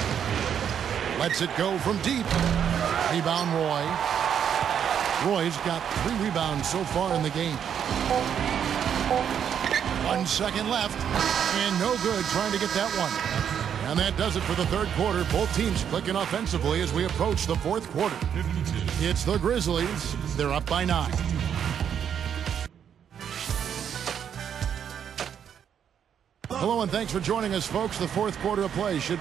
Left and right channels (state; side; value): quieter; left; 8.5 dB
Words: Lets it go from deep. Rebound Roy. Roy's got 3 rebounds so far in the game. 1 second left, and no good trying to get that one. And that does it for the third quarter. Both teams clicking offensively as we approach the fourth quarter. It's the Grizzlies. They're up by 9. Hello and thanks for joining us, folks. The fourth quarter of play should